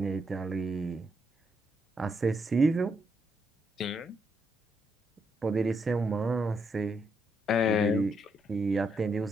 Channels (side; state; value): both; normal; correlation 0.78